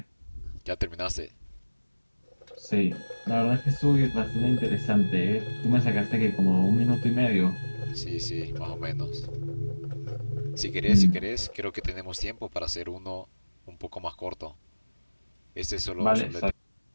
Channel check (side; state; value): both; inverted; correlation -1.00